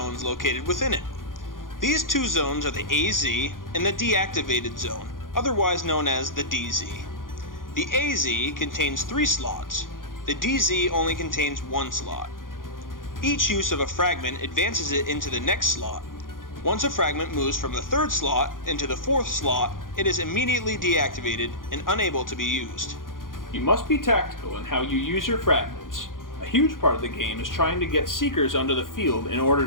located within it. These 2 zones are the AZ and the deactivated zone, otherwise known as the DZ. The AZ contains 3 slots. The DZ only contains 1 slot. Each use of a fragment advances it into the next slot. Once a fragment moves from the 3rd slot into the 4th slot, it is immediately deactivated and unable to be used. You must be tactical in how you use your fragments. A huge part of the game is trying to get Seekers onto the field in order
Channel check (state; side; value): late; right; 0.90 ms